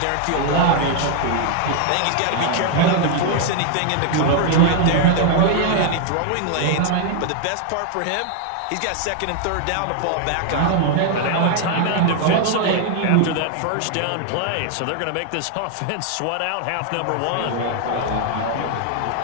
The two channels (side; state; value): both; different; correlation 0.00